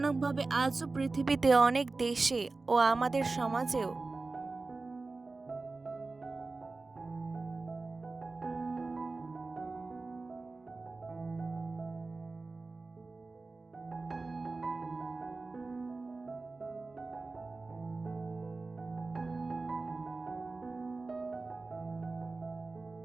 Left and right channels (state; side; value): quieter; left; 3.6 dB